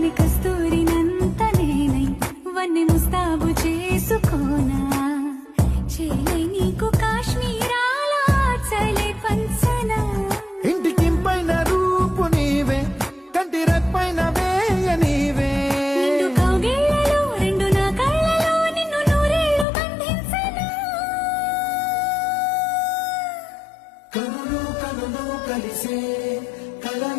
గాలి కస్తూరినంత నేనై వన్నె ముస్తాబు చేసుకోనా చేలే నీకు కాశ్మీరాల చలే పంచనా ఇంటికింపైన రూపు నీవే కంటి రెప్పైన వేయ నీవే నిండు కౌగిళ్ళలో రెండు నా కళ్ళలో నిన్ను నూరేళ్లు బంధించనా కనులు కనులు కలిసే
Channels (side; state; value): right; drops out; at 19.7 s